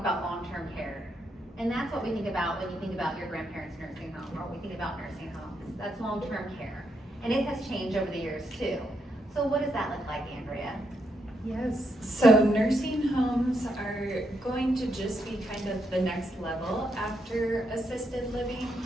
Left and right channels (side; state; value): both; normal; correlation 0.79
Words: long-term care. And that's what we think about when you think about your grandparents' nursing home, or we think about nursing homes. That's long-term care. And it has changed over the years too. So what does that look like, Andrea? Yes, so nursing homes are going to just be kind of the next level after assisted living.